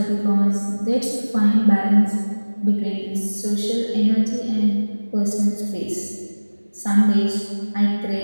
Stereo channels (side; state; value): both; inverted; correlation -1.00